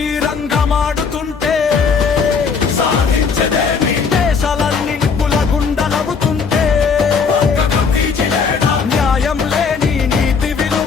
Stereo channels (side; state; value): right; quieter; 5.5 dB